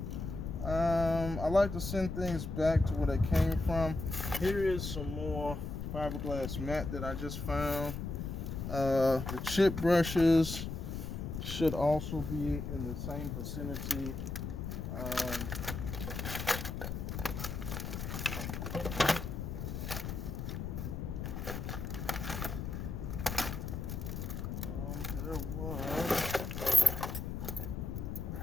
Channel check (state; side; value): noise; left; rumble, 5 dB below the sound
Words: I like to send things back to where they came from. Here is some more fiberglass mat that I just found. The chip brushes should also be in the same vicinity. There was